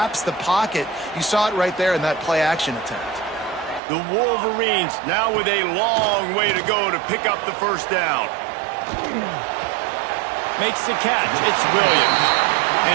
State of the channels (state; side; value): drops out; left; at 3.8 s